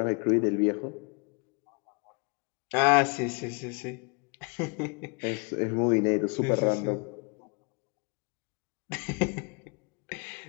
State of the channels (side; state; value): right; quieter; 34.2 dB